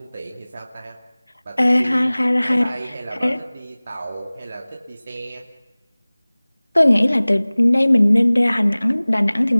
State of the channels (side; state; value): both; inverted; correlation -1.00